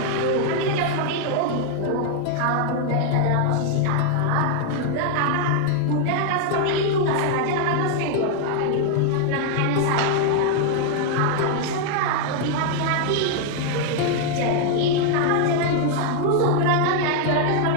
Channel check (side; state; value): both; different; correlation 0.00